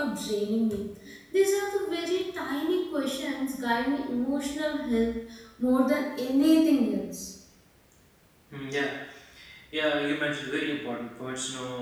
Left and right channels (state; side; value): identical; both; correlation 1.00